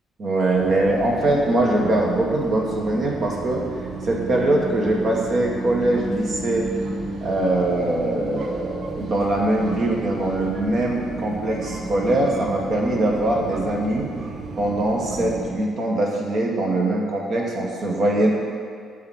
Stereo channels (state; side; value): normal; both; correlation 0.77